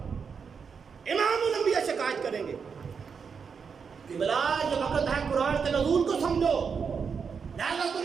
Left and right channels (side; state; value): left; quieter; 6.0 dB